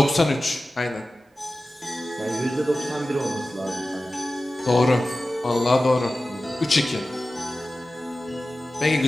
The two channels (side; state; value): both; normal; correlation 0.95